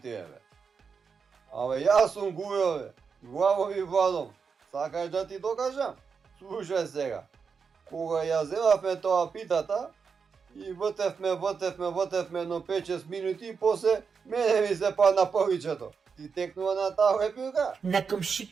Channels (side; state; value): left; quieter; 5.7 dB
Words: бе. Абе, јас сум Гујо бе, главом и владом. Сакаш да ти докажам? Слушај сега. Кога ја земавме тоа питата, и вртевме, но 5-6 минути и после мене ми се падна повичето. Ти текнува на таа лепилка? На